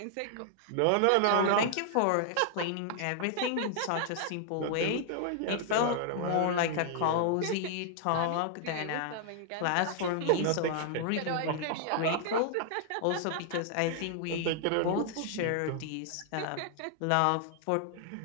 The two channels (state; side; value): different; both; correlation 0.00